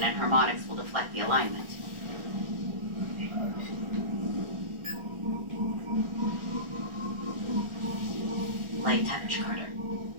and harmonics will deflect the alignment. Light touch, Carter.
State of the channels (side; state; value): left; late; 1.4 ms